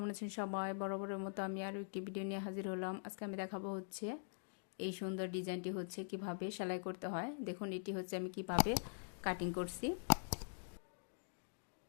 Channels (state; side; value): silent; right; digital silence